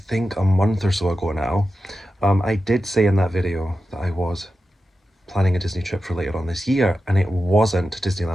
a month or so ago now, I did say in that video that I was planning a Disney trip for later on this year, and it wasn't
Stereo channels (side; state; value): both; normal; correlation 0.91